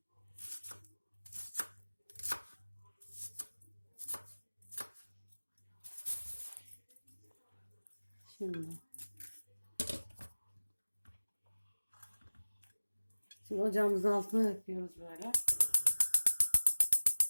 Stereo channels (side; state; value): both; inverted; correlation -1.00